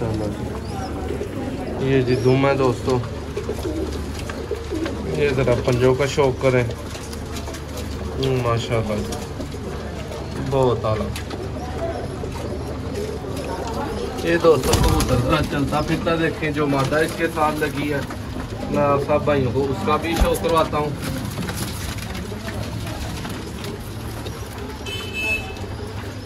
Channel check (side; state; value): both; identical; correlation 1.00